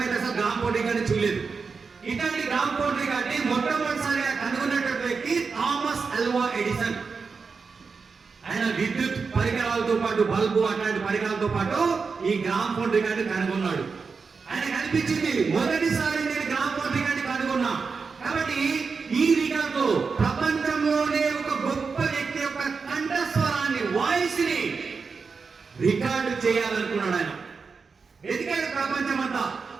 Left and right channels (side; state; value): left; quieter; 5.0 dB